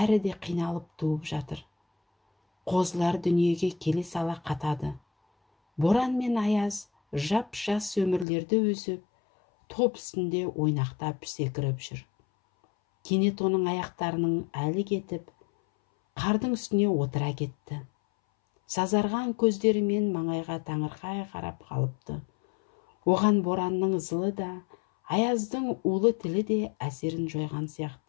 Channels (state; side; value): drops out; right; at 8.2 s